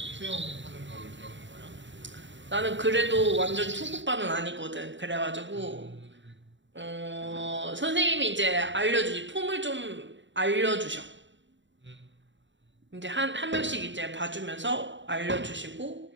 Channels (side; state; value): left; late; 0.54 ms